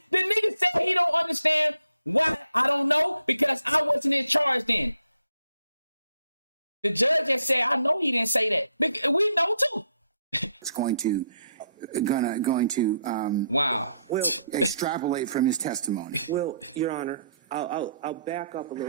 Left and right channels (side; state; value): both; inverted; correlation -0.73